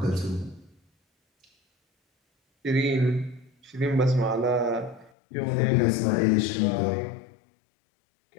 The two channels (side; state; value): right; drops out; at 5.1 s